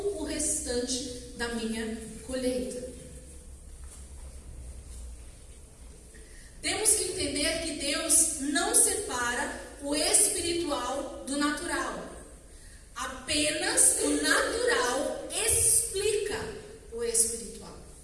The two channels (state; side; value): identical; both; correlation 1.00